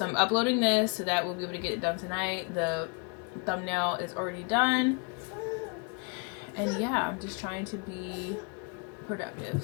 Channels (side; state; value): right; quieter; 34.9 dB